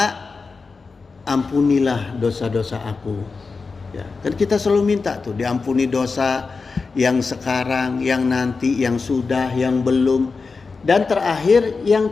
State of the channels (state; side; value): quieter; right; 4.4 dB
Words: ampunilah dosa-dosa aku, ya. Kan kita selalu minta tuh diampuni dosa yang sekarang, yang nanti, yang sudah, yang belum, dan terakhir yang